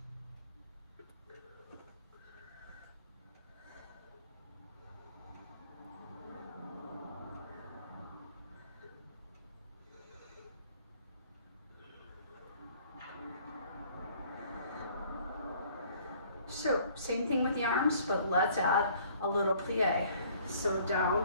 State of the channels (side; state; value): both; inverted; correlation -0.57